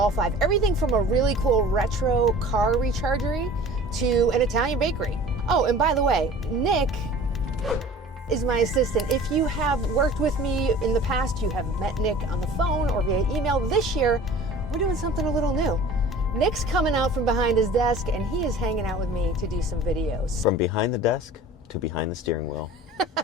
5. Everything from a really cool retro car rechargery to an Italian bakery. Oh, and by the way, Nick is my assistant. If you have worked with me in the past, you have met Nick on the phone or via email. This year, we're doing something a little new. Nick's coming out from behind his desk and he is hanging out with me to do some videos. From behind the desk to behind the steering wheel.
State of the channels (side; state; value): both; normal; correlation 0.43